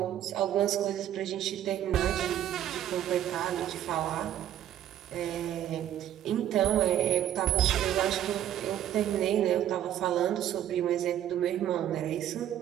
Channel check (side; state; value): left; quieter; 11.3 dB